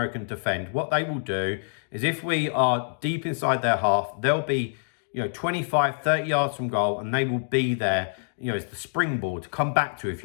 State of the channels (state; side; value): silent; right; digital silence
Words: and defend, what they will do is if we are deep inside their half, they'll be, you know, 25, 30 yards from goal, and they will be there, you know, it's the springboard to come back to. If